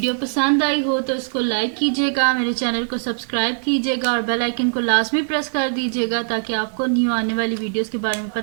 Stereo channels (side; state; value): left; silent; 65 dB below the other